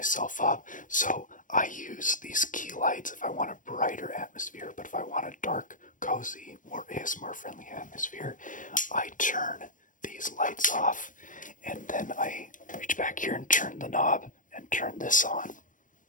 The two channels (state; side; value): late; right; 0.38 ms